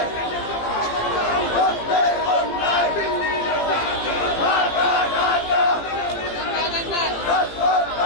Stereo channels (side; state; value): right; late; 17 ms